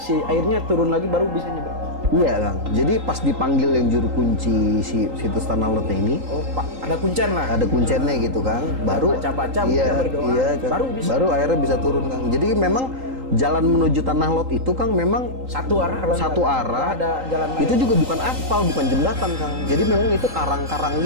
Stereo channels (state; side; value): late; left; 3.8 ms